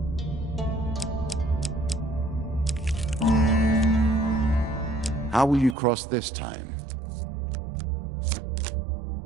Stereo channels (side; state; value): left; drops out; at 5.8 s